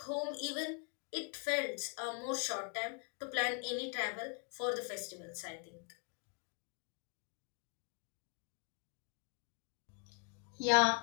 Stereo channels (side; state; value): right; quieter; 40.0 dB